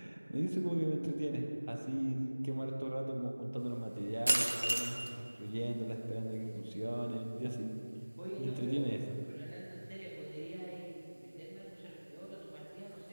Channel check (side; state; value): both; inverted; correlation -1.00